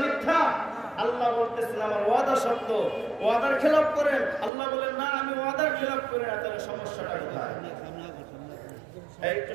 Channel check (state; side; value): drops out; left; at 4.5 s